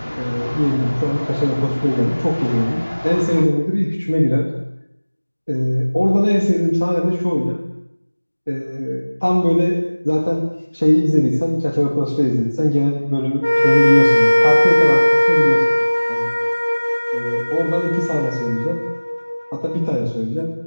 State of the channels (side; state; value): both; inverted; correlation -1.00